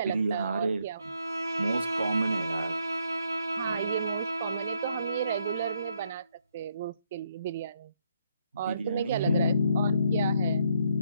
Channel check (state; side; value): inverted; both; correlation -0.74